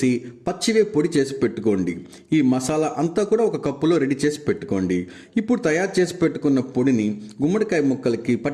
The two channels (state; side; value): identical; both; correlation 1.00